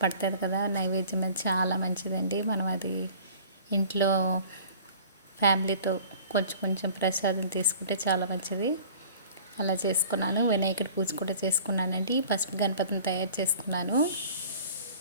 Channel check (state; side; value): inverted; both; correlation -0.47